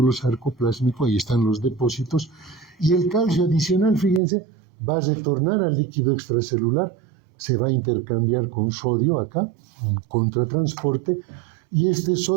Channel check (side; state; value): left; drops out; at 4.2 s